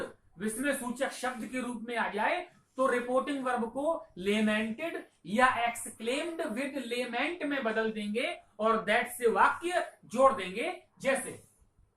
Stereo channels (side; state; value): both; identical; correlation 1.00